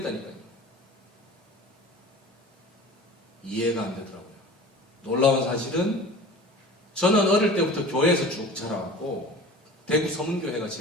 이해가 안 되더라고요. 놀라운 사실은 저는 어릴 때부터 교회에서 쭉 자라왔고, 대구 서문교회가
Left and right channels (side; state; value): both; normal; correlation 0.39